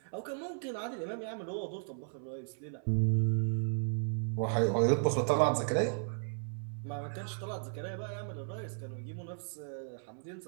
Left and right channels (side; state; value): left; silent; 54 dB below the other